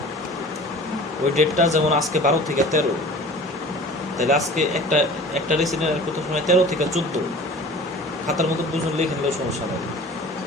ওই ডেটটা যেমন আজকে 12 থেকে 13, তাহলে আজকে একটা রেসিডেন্ট অ্যাড করতে সময় 13 থেকে 14 খাতার মতো দুজন লিখে নিলেও সমস্যা নেই।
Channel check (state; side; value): normal; both; correlation 0.42